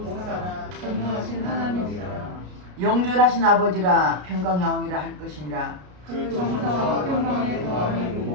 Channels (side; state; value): left; late; 33 ms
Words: 전능하신 하나님이라. 영존하신 아버지라 평강여왕이라 할 것이니라. 그 정사와 평강의 더함이